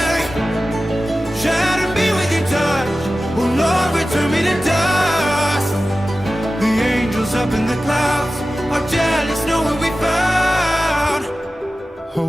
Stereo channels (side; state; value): both; normal; correlation 0.95